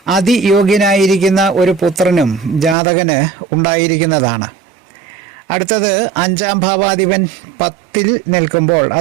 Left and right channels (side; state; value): left; drops out; at 2.8 s